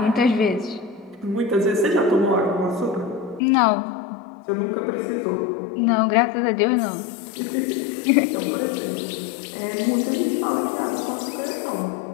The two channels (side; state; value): right; drops out; at 3.4 s